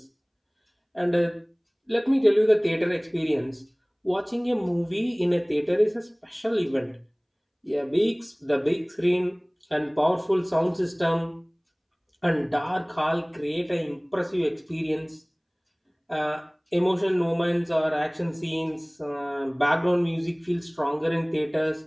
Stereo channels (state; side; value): identical; both; correlation 1.00